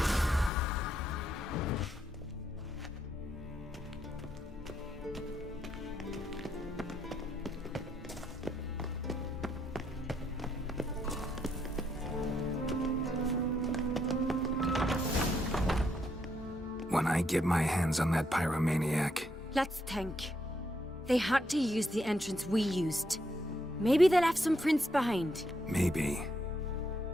When I get my hands on that pyromaniac, Let's think. They had to use the entrance we used. Maybe they left some prints behind. maybe.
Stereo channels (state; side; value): normal; both; correlation 0.76